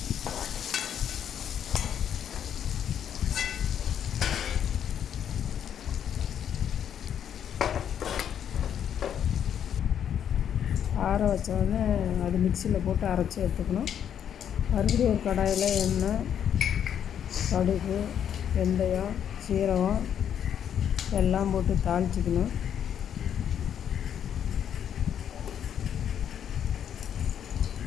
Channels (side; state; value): right; quieter; 9.1 dB